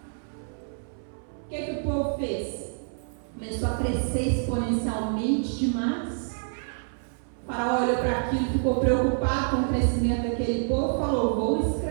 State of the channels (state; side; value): silent; left; 60 dB below the other